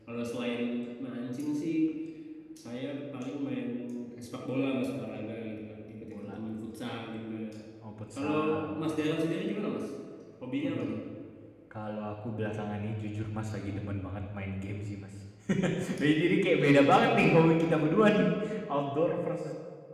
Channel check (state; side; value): identical; both; correlation 1.00